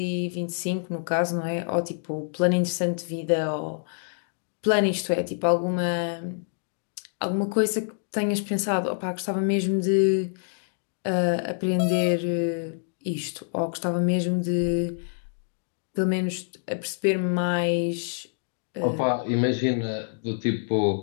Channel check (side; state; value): right; silent; digital silence